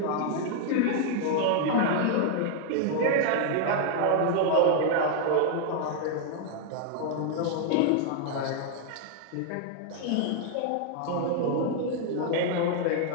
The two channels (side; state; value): both; different; correlation 0.00